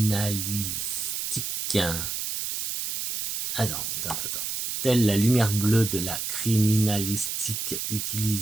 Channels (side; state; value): right; noise; hiss, 2 dB below the sound